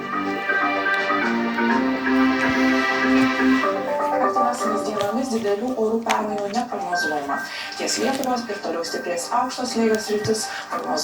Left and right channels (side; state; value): both; identical; correlation 1.00